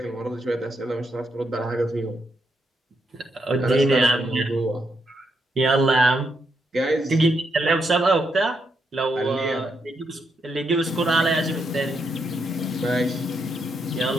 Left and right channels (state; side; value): normal; both; correlation 0.80